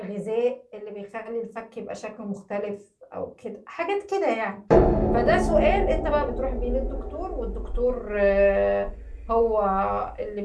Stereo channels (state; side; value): identical; both; correlation 1.00